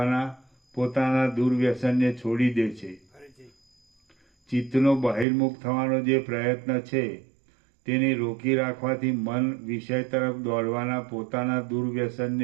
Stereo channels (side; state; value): left; drops out; at 5.2 s